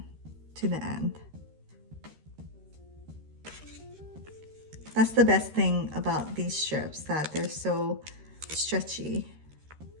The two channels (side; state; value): left; late; 13 ms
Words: to the end. That's the best thing about these strips, that they're so stretchy.